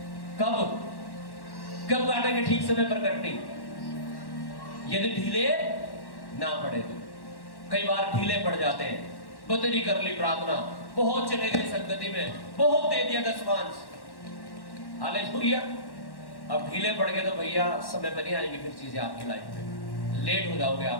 कब काटेंगे ठीक समय पर कटनी? यदि ढीले ना पड़े तो। कई बार ढीले पड़ जाते हैं, बदली कर ली प्रार्थना, बहुत चले गए संगति में, बहुत दे दिया दशमांश, हालेलुया। अब ढीले पड़ गए तो भैया समय पर नहीं आएंगी फिर चीजें आपकी लाइफ में, लेट हो जाओगे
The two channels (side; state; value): right; late; 1.1 ms